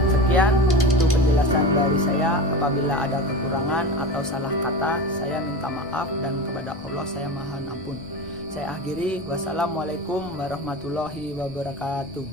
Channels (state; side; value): normal; both; correlation 0.28